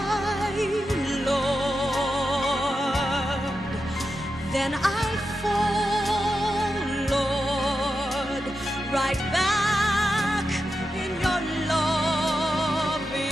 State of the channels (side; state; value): both; normal; correlation 0.89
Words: Lord. Then I fall, Lord, right back in your loving